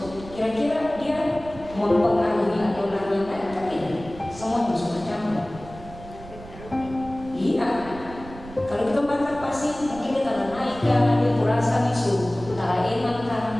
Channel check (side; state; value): right; noise; rumble, 16 dB below the sound